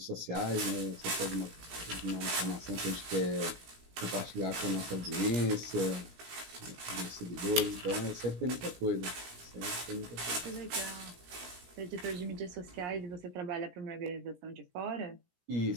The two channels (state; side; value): late; left; 17 ms